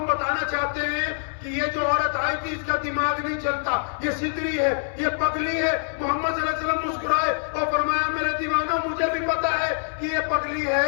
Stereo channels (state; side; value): silent; right; 62 dB below the other